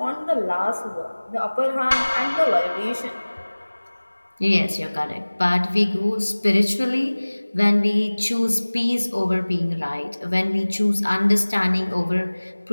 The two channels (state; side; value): inverted; both; correlation -1.00